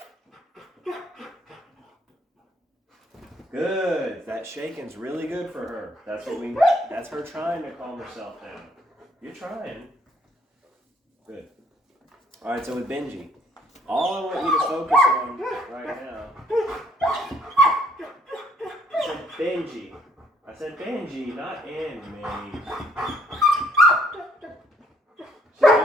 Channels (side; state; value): both; normal; correlation 0.66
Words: Okay? Good. That shaking's really good for her. That's her trying to calm herself down. You're trying. Good. Alright, so with Benji, all I want you to focus on right now. I said Benji, not Emmy.